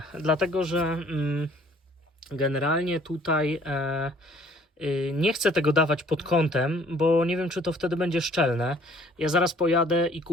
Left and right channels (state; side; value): normal; both; correlation 0.57